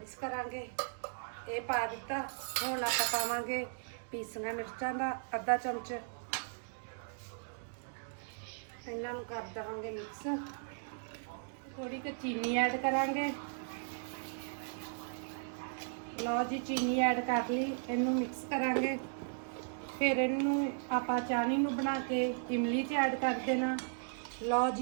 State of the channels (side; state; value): left; silent; digital silence